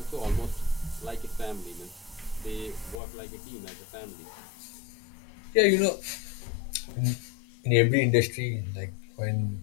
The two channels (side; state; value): right; drops out; at 3.0 s